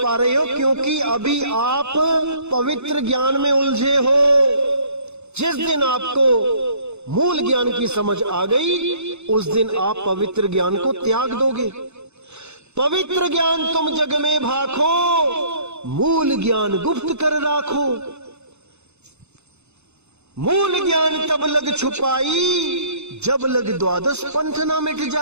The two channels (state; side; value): late; left; 0.81 ms